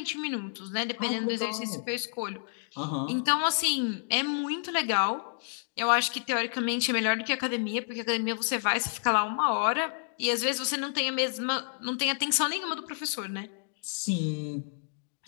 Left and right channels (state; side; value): silent; right; digital silence